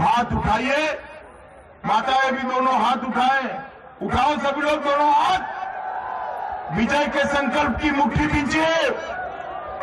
उठाइए, माताएं भी दोनों हाथ उठाएं, उठाओ सभी लोग दोनों हाथ, विजय के संकल्प की मुट्ठी दीजिए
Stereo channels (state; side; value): identical; both; correlation 1.00